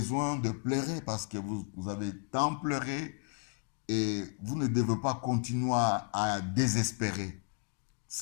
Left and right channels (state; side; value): quieter; right; 39.8 dB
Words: de pleurer parce que vous avez tant pleuré et vous ne devez pas continuer à désespérer.